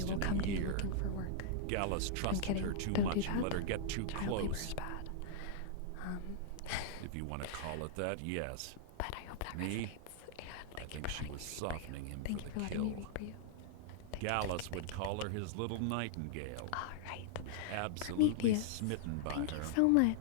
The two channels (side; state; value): both; different; correlation -0.01